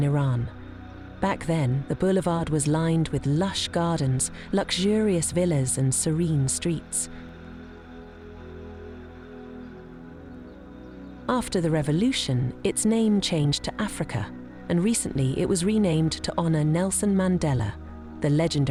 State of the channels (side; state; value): both; identical; correlation 1.00